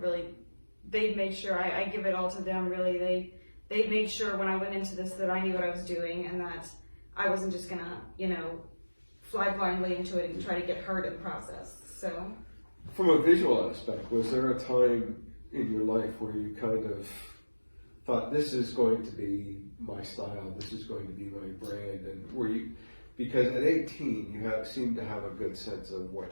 really, they've made sure I give it all to them, really. They made sure when I went into this that I knew what I was doing and that I wasn't just gonna, fly blindly into it and try to get hurt in the process. So, from a visual aspect, was there a time in your life where you kind of thought, this is going to be my style, this is going to be my brand, and were you, because at 18 you seem to have a good sense of what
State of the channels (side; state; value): both; inverted; correlation -1.00